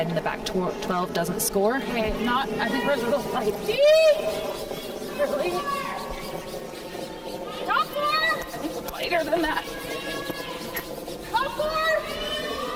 in the back 12 doesn't score. Okay, not. I think we're a little light. Really? Top four! I think we're lighter than that. Top four!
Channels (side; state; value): both; identical; correlation 1.00